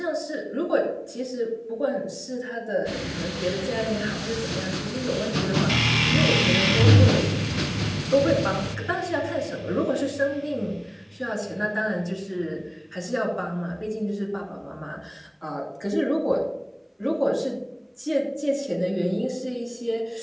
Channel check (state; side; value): identical; both; correlation 1.00